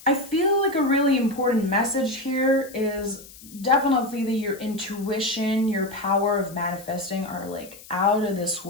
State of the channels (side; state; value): left; noise; hiss, 19 dB below the sound